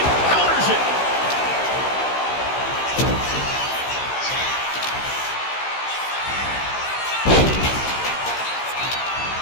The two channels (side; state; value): right; late; 15 ms